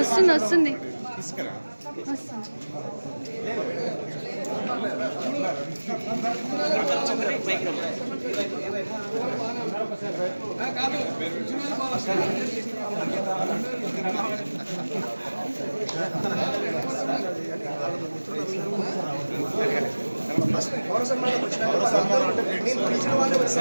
వస్తుంది పౌర సన్మానం వచ్చిన నేను పిలిచిన వాళ్ళే వచ్చి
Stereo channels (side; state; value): both; inverted; correlation -1.00